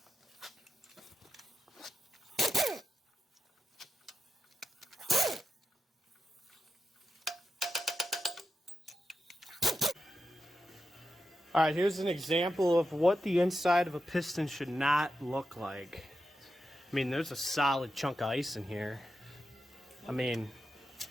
All right, here's an example of what the inside of a piston should not look like. I mean, there's a solid chunk of ice in here. I mean,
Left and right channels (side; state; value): both; normal; correlation 0.89